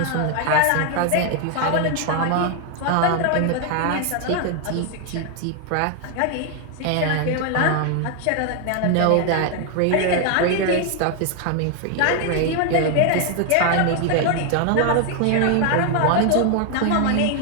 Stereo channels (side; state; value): both; different; correlation 0.00